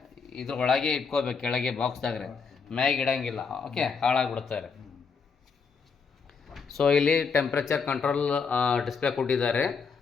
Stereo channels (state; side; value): quieter; right; 5.5 dB